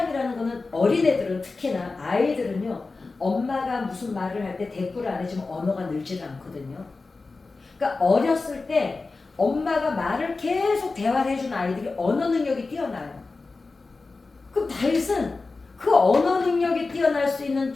거는 어린애들은 특히나 아이들은요 엄마가 무슨 말을 할 때 대꾸를 안 해주면 언어가 늘지를 않거든요. 그러니까 어렸을 때 엄마가 말을 계속 대화를 해준 아이들이 언어 능력이 뛰어나요. 그럼 다윗은 그 언어 능력이 뛰어날 수 있는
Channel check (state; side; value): quieter; right; 3.8 dB